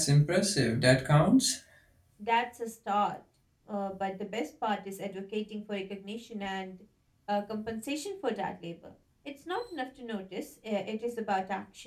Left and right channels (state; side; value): identical; both; correlation 1.00